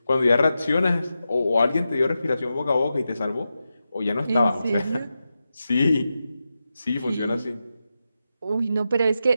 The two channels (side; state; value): both; inverted; correlation -0.90